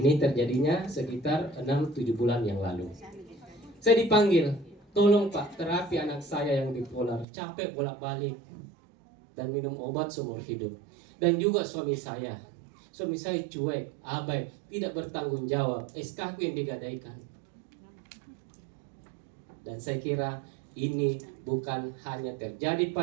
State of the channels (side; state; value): left; drops out; at 7.2 s